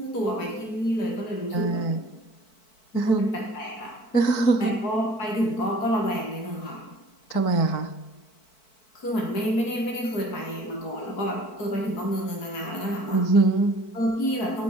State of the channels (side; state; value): right; late; 4.5 ms